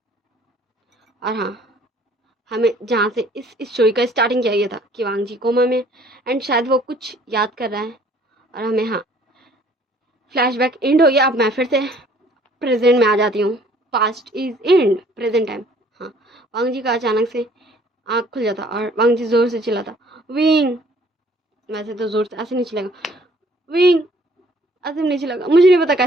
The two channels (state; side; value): normal; both; correlation 0.58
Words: और हाँ, हमें जहाँ से इस स्टोरी का स्टार्टिंग किया गया था कि वांग जी कोमा में, एंड शायद वो कुछ याद कर रहा है, और हमें हाँ फ्लैशबैक एंड हो गया। अब मैं फिर से प्रेजेंट में आ जाती हूँ, past is and, present time. हाँ, वांग जी का अचानक से आँख खुल जाता, और वांग जी जोर से चिल्लाता विंग। वैसे तो जोर से ऐसे नहीं चिल्लेगा, विंग ऐसे नहीं चिल्लेगा, मुझे नहीं पता